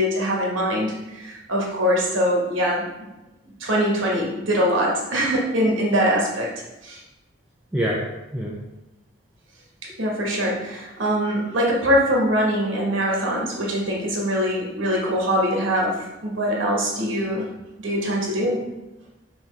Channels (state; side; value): normal; both; correlation 0.24